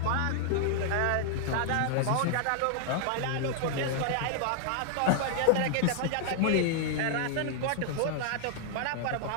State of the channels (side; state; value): both; different; correlation -0.01